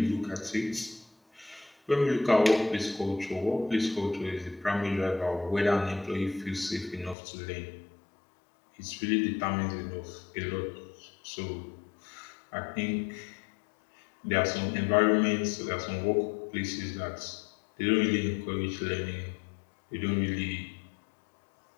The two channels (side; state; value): right; drops out; at 7.2 s